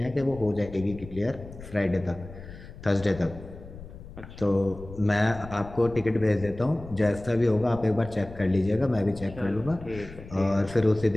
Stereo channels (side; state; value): left; noise; rumble, 15 dB below the sound